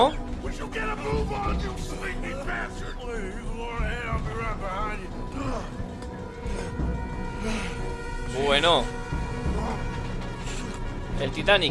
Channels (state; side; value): identical; both; correlation 1.00